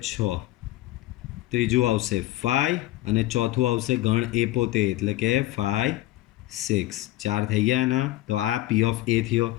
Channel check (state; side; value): quieter; right; 16.5 dB